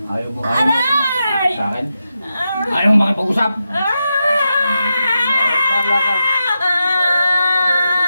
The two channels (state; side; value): inverted; both; correlation -0.88